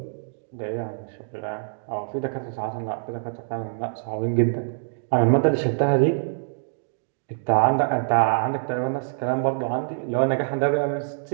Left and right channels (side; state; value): left; silent; digital silence